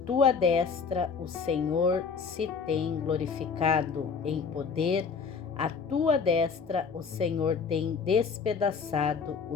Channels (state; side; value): quieter; right; 5.6 dB